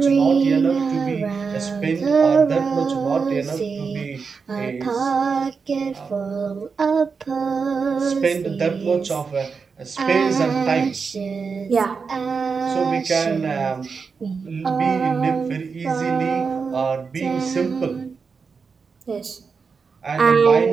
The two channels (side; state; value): left; quieter; 5.3 dB